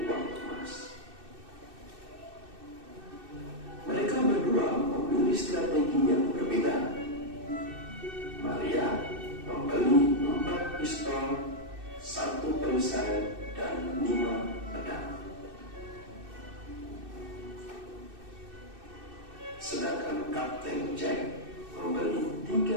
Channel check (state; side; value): late; left; 2.6 ms